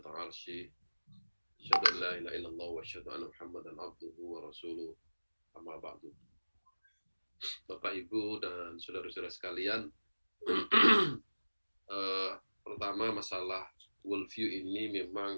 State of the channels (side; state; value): both; inverted; correlation -1.00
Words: arsy. Asyhadu an la ilaha illallah wa asyhadu anna Muhammadan abduhu wa rasuluh. Amma ba'du. Bapak, Ibu, dan saudara-saudara sekalian, pertama masalah worldview ini